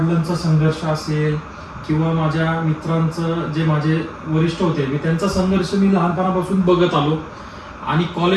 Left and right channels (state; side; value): identical; both; correlation 1.00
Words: संघर्ष असेल किंवा माझ्या मित्रांचं जे माझे वरिष्ठ होते मी त्यांचा संघर्ष मी लहानपणापासून बघत आलो. आणि